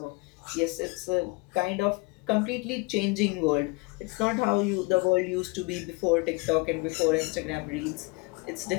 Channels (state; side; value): quieter; right; 26.4 dB